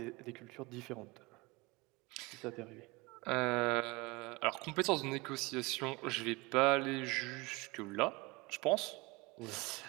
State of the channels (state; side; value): quieter; left; 24.5 dB